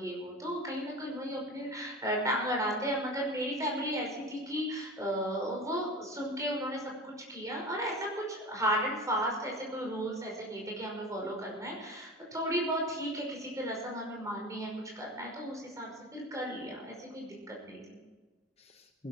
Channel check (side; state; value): both; normal; correlation 0.32